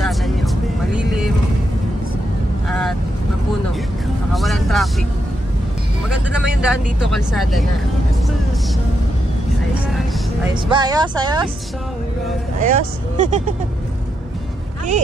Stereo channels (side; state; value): both; normal; correlation 0.83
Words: nyo. Malilim at mapuno. Saka walang traffic. Maganda naman yung daan dito, kalsada na. Ayos, ayos. Ayos ba? Ayos, ayos? Ayos?